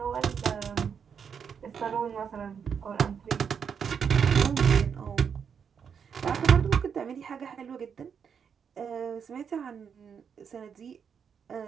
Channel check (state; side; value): quieter; left; 7.0 dB